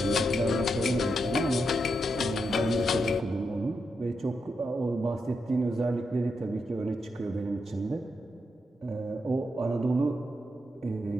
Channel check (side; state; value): both; normal; correlation 0.84